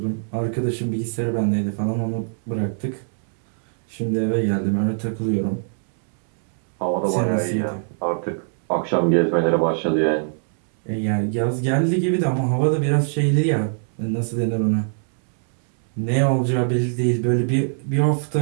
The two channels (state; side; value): silent; left; 64 dB below the other